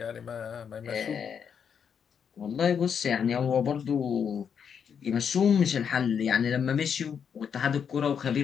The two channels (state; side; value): quieter; right; 7.3 dB